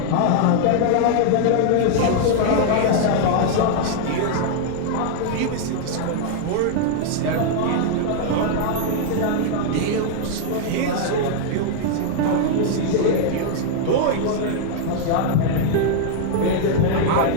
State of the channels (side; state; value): both; different; correlation 0.00